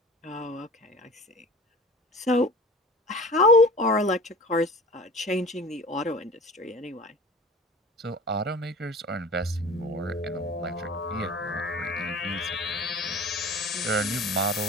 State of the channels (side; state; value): both; normal; correlation 0.40